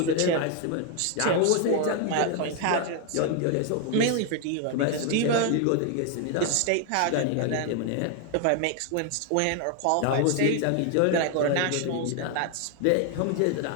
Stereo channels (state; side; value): different; both; correlation 0.01